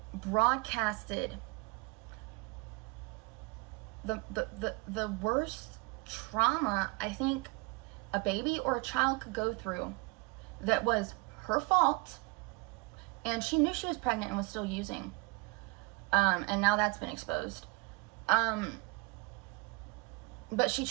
broadcasted the worst trauma I think a baby or a child could go through, that was her fault, and she knew she was pregnant and was still using, and now that's been exposed, but she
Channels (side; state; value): left; quieter; 27.2 dB